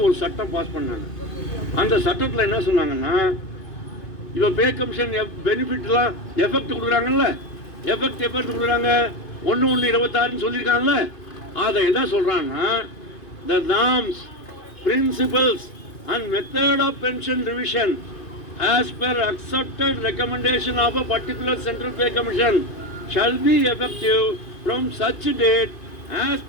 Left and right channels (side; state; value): right; late; 2.5 ms